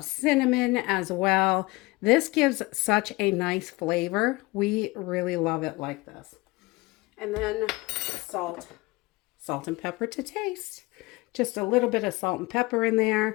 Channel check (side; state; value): right; quieter; 22.8 dB